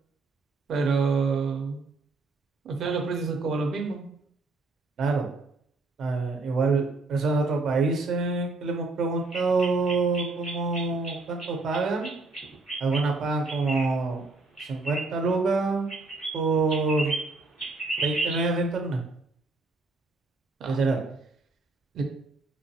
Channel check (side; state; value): left; quieter; 3.4 dB